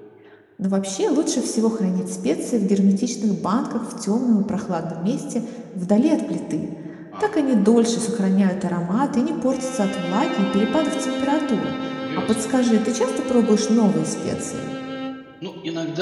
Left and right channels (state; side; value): identical; both; correlation 1.00